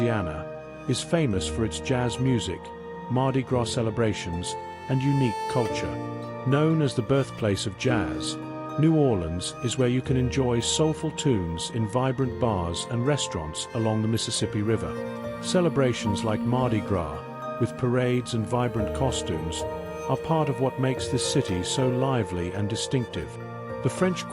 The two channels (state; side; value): identical; both; correlation 1.00